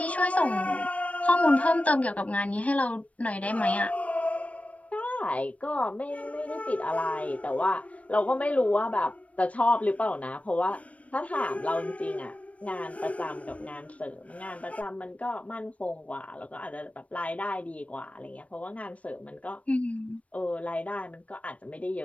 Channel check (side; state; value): right; late; 0.065 ms